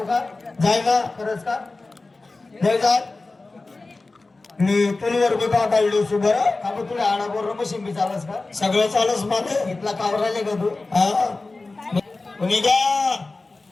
का? जायला खरंच का? नाही जात मी पुलवर बी काढलो सु बरं का बरं तुला आडा बोल मशीन बी चालस का? सगळं चालच मला इथला कावर राहिले का तू? हा कोणी का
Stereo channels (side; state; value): right; quieter; 3.4 dB